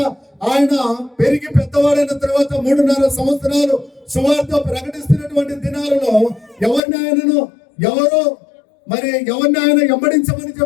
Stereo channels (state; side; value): drops out; right; at 6.8 s